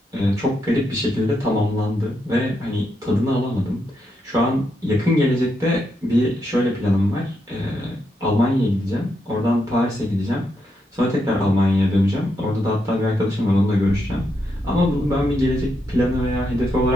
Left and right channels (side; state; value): both; normal; correlation 0.81